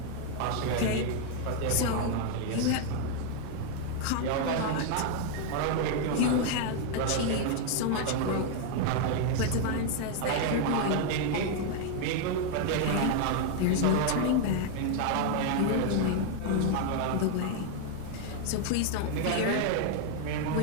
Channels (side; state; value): both; different; correlation 0.00